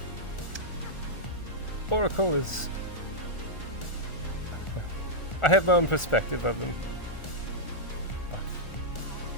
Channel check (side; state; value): right; late; 1.4 ms